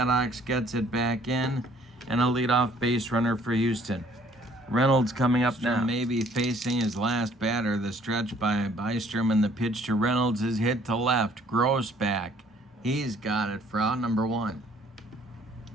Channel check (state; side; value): normal; both; correlation 0.59